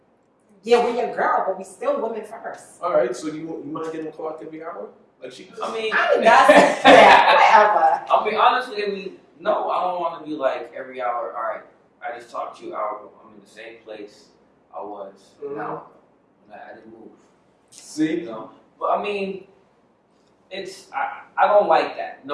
yeah, we're your girl, but we still women first. All right, so you mind getting clocked every hour? Like she does? I mean, whatever. I mean, honestly, no, I don't want to be like every hour. All right, I just talked to you hour. I'm in the same place I was an hour ago. I didn't move. See? But I mean, I don't like that.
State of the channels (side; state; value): both; identical; correlation 1.00